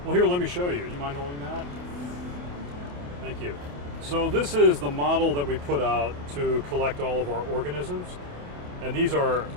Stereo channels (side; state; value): left; late; 28 ms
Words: Well, here, let me show you. You mind holding that? Thank you. So this is the model that we put out to collect all of our organisms. And these are